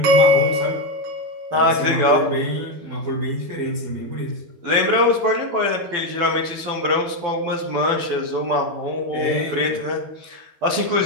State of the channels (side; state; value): left; late; 12 ms